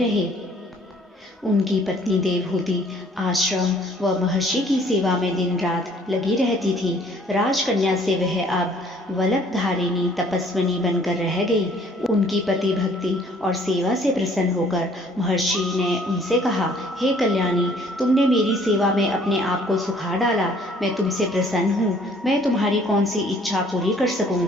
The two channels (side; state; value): both; normal; correlation 0.58